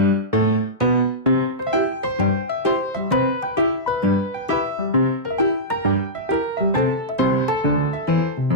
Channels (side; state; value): both; normal; correlation -0.13